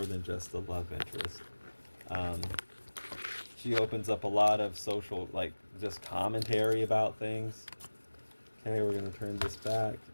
than just a love interest. She opens up a lot of social, like just commentary about things. Okay, we're gonna turn this back,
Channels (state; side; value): inverted; both; correlation -1.00